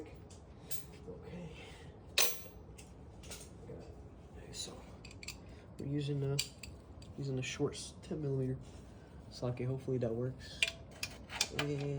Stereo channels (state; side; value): identical; both; correlation 1.00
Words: Okay. Got it. Okay, so we're using a short 10 millimeter socket. Hopefully that works.